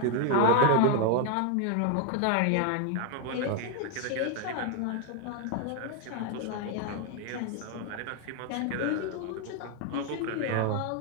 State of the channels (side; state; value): both; different; correlation 0.01